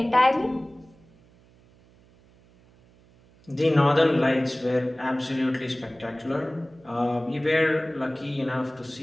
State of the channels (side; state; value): right; noise; hum, 29 dB below the sound